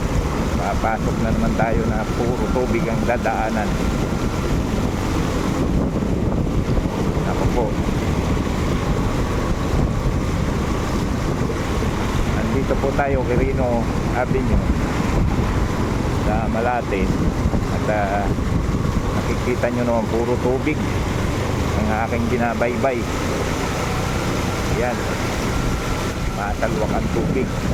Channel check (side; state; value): both; identical; correlation 1.00